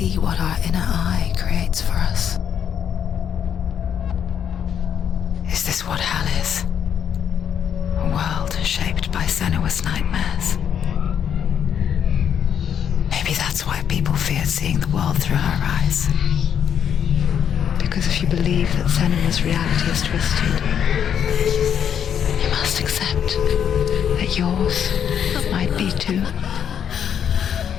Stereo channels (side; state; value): right; quieter; 8.5 dB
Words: what our inner eye creates for us? Is this what hell is? A world shaped by Senua's nightmares. Maybe that's why people feared seeing the world through her eyes. Because if you believe that Senua's reality is twisted, you must accept that yours might be too.